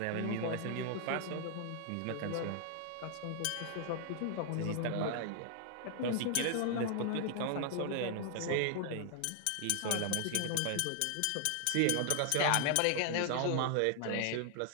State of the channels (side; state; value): both; different; correlation 0.00